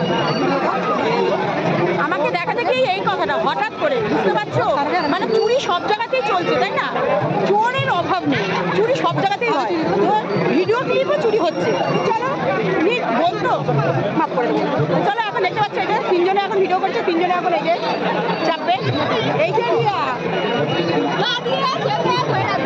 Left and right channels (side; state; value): both; identical; correlation 1.00